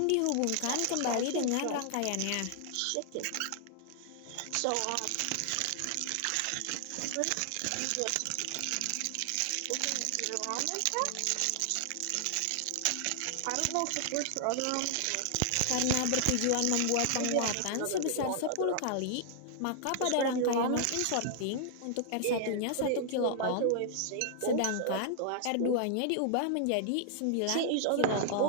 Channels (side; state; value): both; different; correlation 0.00